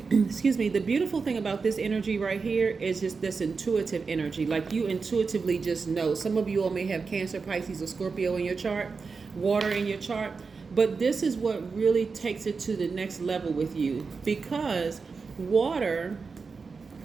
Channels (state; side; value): quieter; left; 4.8 dB